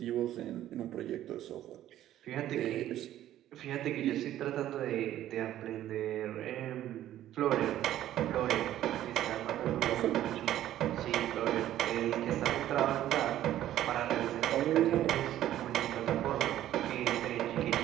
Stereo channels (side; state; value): left; quieter; 12.8 dB